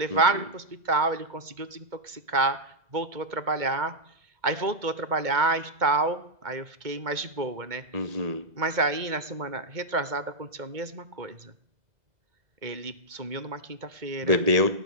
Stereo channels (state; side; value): late; left; 2.2 ms